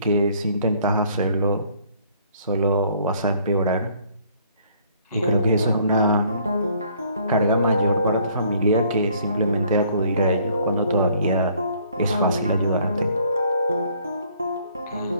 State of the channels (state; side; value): inverted; both; correlation -0.61